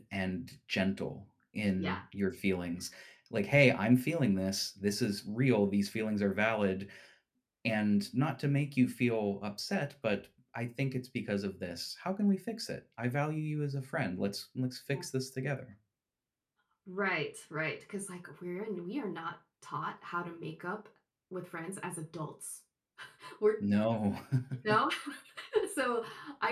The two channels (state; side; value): identical; both; correlation 1.00